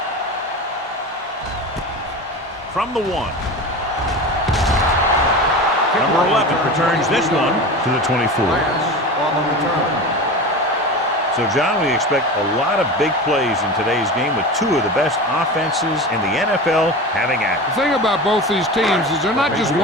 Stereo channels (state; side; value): normal; both; correlation 0.29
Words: From the 1. Number 11 returns this one to the 24. So, John, we expect a lot of big plays in today's game with two of the best offenses in the NFL having at it. The thing about both these teams is they're not just